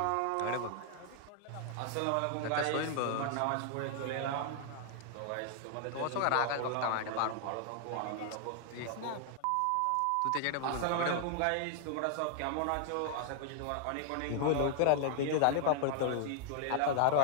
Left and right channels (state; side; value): different; both; correlation 0.00